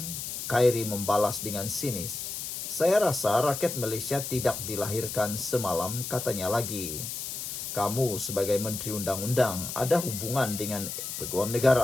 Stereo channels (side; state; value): left; noise; hiss, 6 dB below the sound